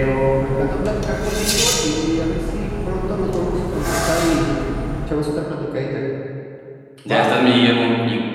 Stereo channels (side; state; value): both; identical; correlation 1.00